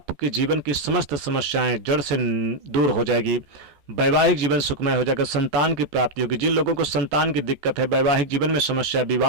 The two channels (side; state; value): left; late; 14 ms